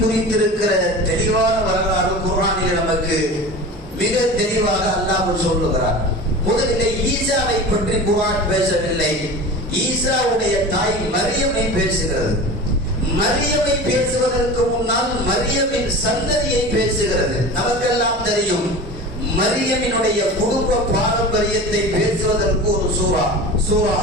தெளிவான வரலாறு குர்ஆனில் நமக்கு மிக தெளிவாக அல்லாஹ் சொல்லுகிறார். முதலிலே ஈசாவை பற்றி குர்ஆன் பேசவில்லை, ஈசாவுடைய தாய் மரியமை பேசுகிறது. மரியமை பேசுவதற்கு முன்னால் மரியமின் சந்ததியை பேசுகிறது. நமக்கெல்லாம் தெரியும், மரியமினுடைய குடும்ப பாரம்பரியத்தை பேசுவதற்கு ஒரு சூரா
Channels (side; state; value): both; normal; correlation 0.33